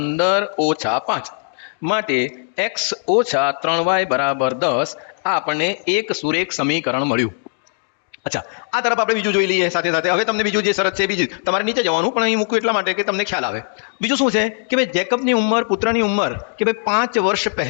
- 5. માટે x - 3y બરાબર 10. આ આપણને એક સુરેખ સમીકરણ મળ્યું. અચ્છા, આ તરફ આપણે બીજું જોઈ લઈએ સાથે સાથે. હવે તમને બીજું જે શરત છે બીજી તમારે નીચે જવાનું, પણ અહીં મૂકું એટલા માટે કે તમને ખ્યાલ આવે. બીજું શું છે કે ભાઈ જેકબની ઉંમર પુત્રની ઉંમર કે ભાઈ 5 વર્ષ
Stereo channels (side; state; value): right; silent; digital silence